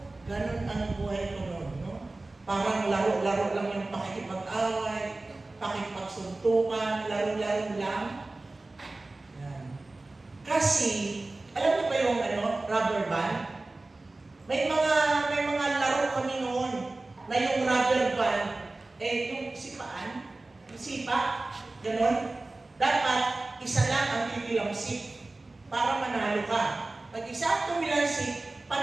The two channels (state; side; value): quieter; left; 3.1 dB